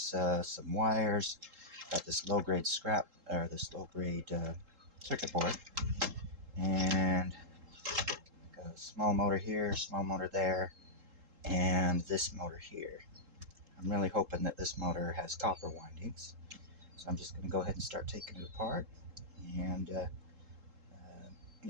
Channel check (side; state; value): left; late; 3.7 ms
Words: some wires. Got this low-grade scrap, or this low-grade circuit board, and got a small motor here, small motor there, and this motor here. I'm really hoping that this motor has copper windings. So I'm just going to go ahead and start taking it apart and